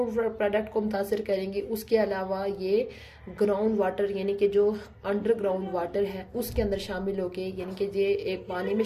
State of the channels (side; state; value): both; identical; correlation 1.00